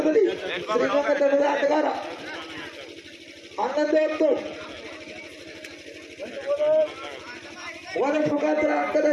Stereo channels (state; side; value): identical; both; correlation 1.00